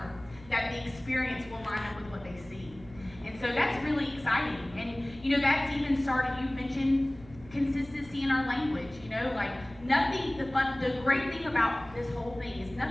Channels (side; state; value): right; noise; hum, 20 dB below the sound